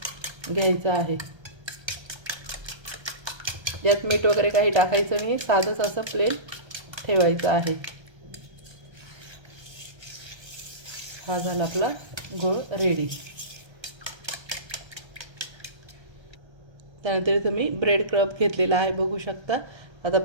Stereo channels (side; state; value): left; late; 1.3 ms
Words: घ्यायचं आहे. यात मीठ वगैरे काही टाकायचं नाही, साधंच असं प्लेन ठेवायचं आहे. हा झाला आपला घोळ रेडी. त्यानंतर इथं मी ब्रेड क्रब घेतलेला आहे बघू शकता. आता